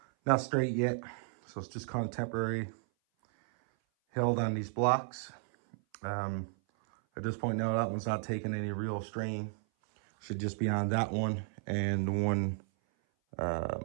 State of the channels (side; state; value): left; silent; 55 dB below the other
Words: straight yet, so it's just kind of temporary held on these blocks. At this point now, that one's not taking any real strain. Should just be on that one and the one